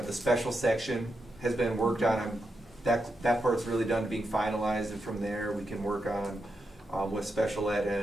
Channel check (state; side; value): normal; both; correlation 0.86